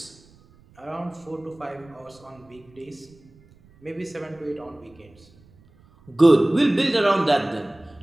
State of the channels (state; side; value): noise; right; rumble, 28 dB below the sound